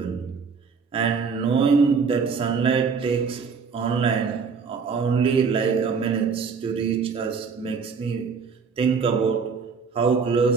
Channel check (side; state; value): left; quieter; 5.5 dB